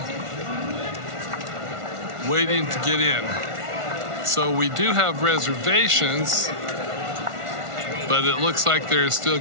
waiting to get in. So we do have reservations, but it looks like there's still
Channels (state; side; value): late; left; 1.4 ms